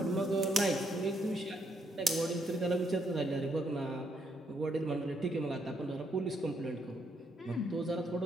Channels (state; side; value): normal; both; correlation 0.74